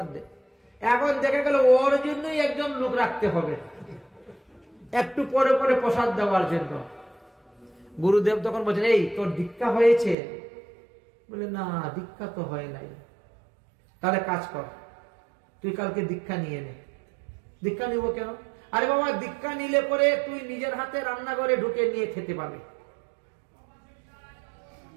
দে। এখন দেখে গেল ওর জন্যই একজন লোক রাখতে হবে একটু পরে পরে প্রসাদ দেওয়ার জন্য। গুরুদেব তখন বলছেন, এই তোর দীক্ষা হয়েছে? বলে না, দীক্ষা তো হয় নাই। তাহলে কাজ কর, তুই কালকে দীক্ষা নিয়ে নে। দীক্ষা নিব কেন? আরে বাবা, দীক্ষা নিলে পরে তুই নিজের হাতে রান্নাঘরে ঢুকে নিয়ে খেতে পাবে।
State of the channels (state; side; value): drops out; left; at 10.2 s